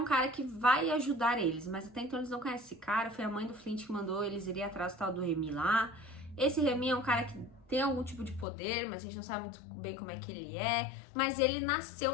cara que vai ajudar eles, mas até então eles não conhecem esse cara, foi a mãe do Flint que mandou eles irem atrás do tal do Remy lá. Esse Remy é um cara que tem algum tipo de poder, mas a gente não sabe muito bem como é que ele é, mas ele nasceu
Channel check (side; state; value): right; drops out; at 8.5 s